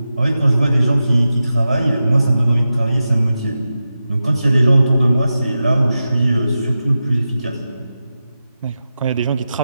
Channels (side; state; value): both; inverted; correlation -0.92